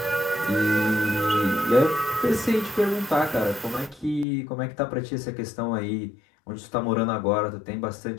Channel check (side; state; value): right; drops out; at 4.2 s